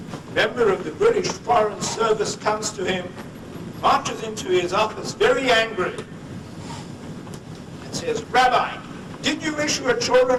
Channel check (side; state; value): both; identical; correlation 1.00